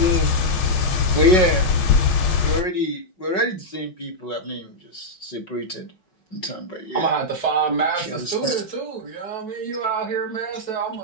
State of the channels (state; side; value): late; right; 5.4 ms